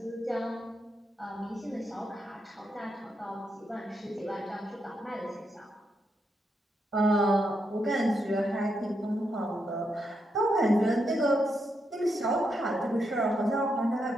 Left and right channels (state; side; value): normal; both; correlation 0.82